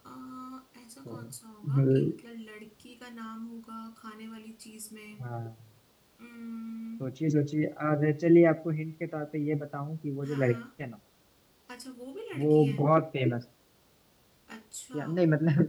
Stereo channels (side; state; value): both; identical; correlation 1.00